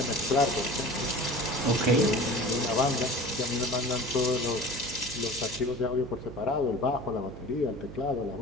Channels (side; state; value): right; noise; hum, 12 dB below the sound